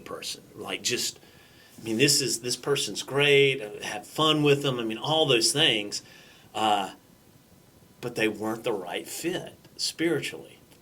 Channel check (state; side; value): identical; both; correlation 1.00